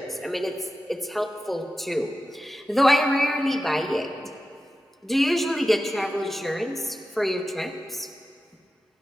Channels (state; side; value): normal; both; correlation 0.93